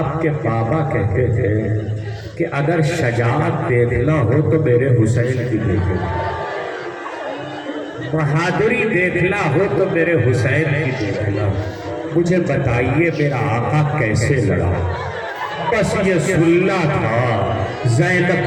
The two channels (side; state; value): both; identical; correlation 1.00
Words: کے بابا کہتے تھے کہ اگر شجاعت دیکھنا ہو تو میرے حسین کی دیکھو، بہادری دیکھنا ہو تو میرے حسین کی دیکھنا. مجھے بتائیے میرا آقا کیسے لڑا؟ بس یہ سننا تھا.